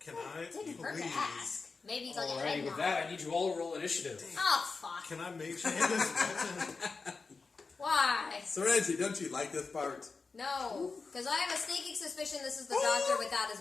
I Didn't hurt to please? ask. Maybe he's like a Alrighty, head with nod. that, I need you all to roll initiative. Oh fuck! Can I make changes? Why? Serenity, don't you like this part? No, because I have a sneaking suspicion this is the doctor without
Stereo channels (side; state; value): right; quieter; 4.4 dB